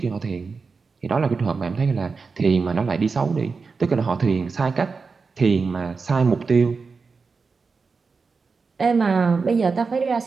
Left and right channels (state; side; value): quieter; left; 4.7 dB